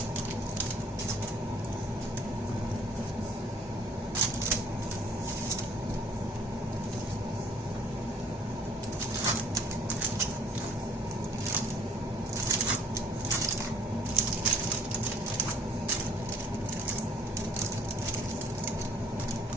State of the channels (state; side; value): normal; both; correlation 0.59